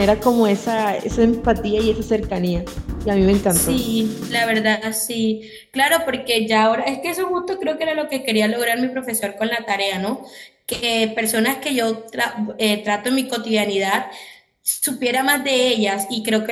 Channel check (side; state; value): both; identical; correlation 1.00